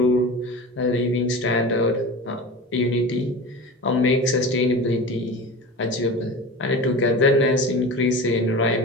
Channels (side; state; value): both; normal; correlation 0.32